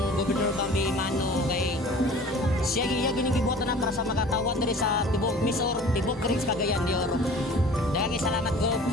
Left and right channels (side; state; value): both; normal; correlation 0.45